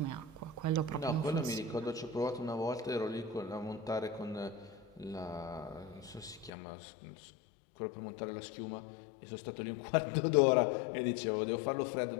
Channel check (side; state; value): right; drops out; at 6.5 s